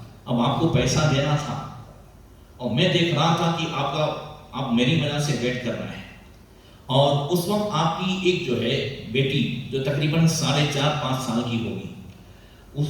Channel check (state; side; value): identical; both; correlation 1.00